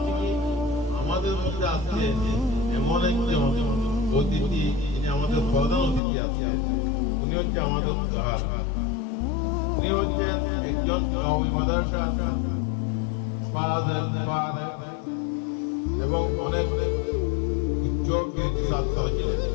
কি, আমাদের মধ্যে আছে এমন একজন অতিথি, যিনি আমাদের প্রধান অতিথি আছে, উনি হচ্ছে আমাদের উদাহরণ। উনি হচ্ছেন একজন কওমি মাদ্রাসা এবং অনেক উচ্চ ছাত্র ছিলেন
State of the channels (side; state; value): right; drops out; at 6.0 s